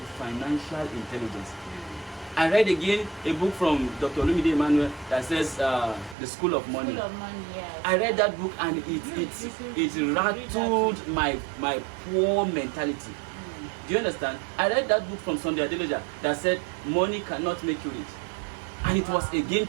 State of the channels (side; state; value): left; drops out; at 6.2 s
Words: financial intelligence. I read again a book from Dr. Olumide Emmanuel that says The School of Money. School of Money, yes. I read that book and it rattled my poor mentality. Do you understand? I read that book from Sunday Adeloja that said money cannot make you rich, and it was a game